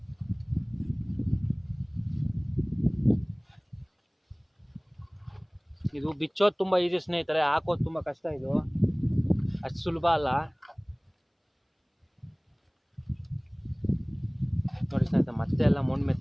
ಇದು ಬಿಚ್ಚೋದು ತುಂಬ ಈಸಿ ಸ್ನೇಹಿತರೆ, ಹಾಕೋದು ತುಂಬ ಕಷ್ಟ. ಇದು ಅಷ್ಟು ಸುಲಭ ಅಲ್ಲ ನೋಡಿ ಸ್ನೇಹಿತರೆ. ಮತ್ತೆ ಎಲ್ಲ ಮಣ್ಣು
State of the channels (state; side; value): identical; both; correlation 1.00